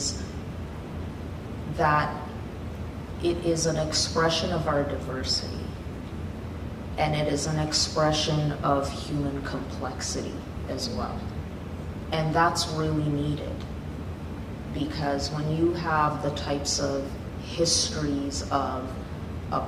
that it is an expression of our diversity, and it is an expression of human complexity as well. And that's really needed, because when you have the types of histories of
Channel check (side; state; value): both; identical; correlation 1.00